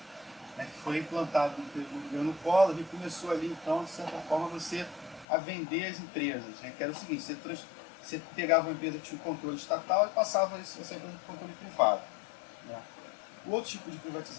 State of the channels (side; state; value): right; drops out; at 5.2 s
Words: né, que foi implantado no governo Collor e começou ali, então, de certa forma, você a vender as empresas. Né, que era o seguinte, você pegava uma empresa que tinha um controle estatal e passava isso para o controle privado. Né. O outro tipo de